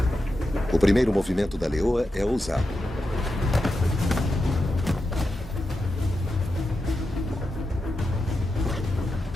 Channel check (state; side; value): normal; both; correlation 0.89